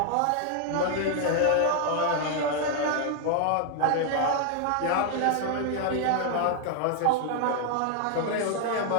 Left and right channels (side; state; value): both; different; correlation 0.00